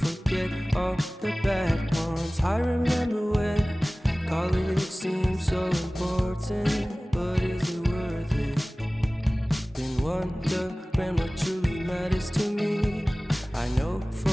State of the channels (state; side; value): normal; both; correlation 0.98